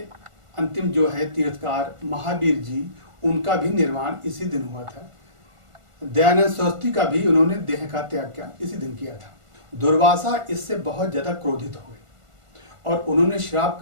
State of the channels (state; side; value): late; left; 1.5 ms